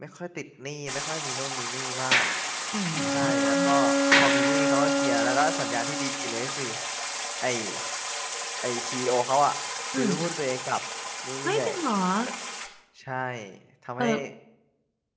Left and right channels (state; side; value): identical; both; correlation 1.00